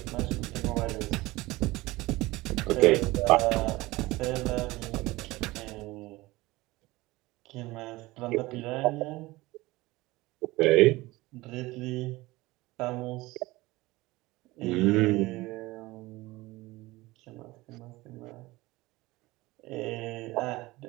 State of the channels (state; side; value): quieter; left; 20.1 dB